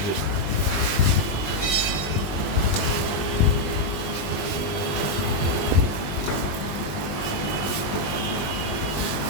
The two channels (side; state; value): right; late; 20 ms